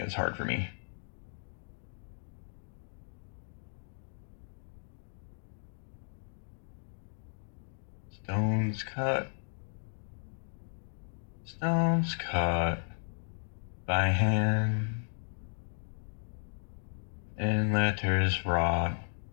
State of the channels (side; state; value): right; silent; digital silence